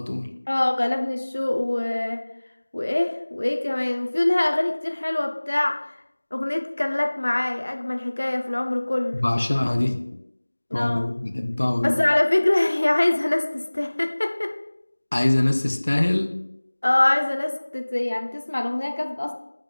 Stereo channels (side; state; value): both; inverted; correlation -1.00